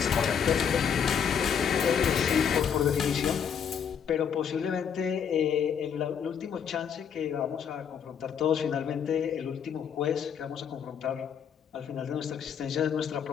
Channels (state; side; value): quieter; right; 7.6 dB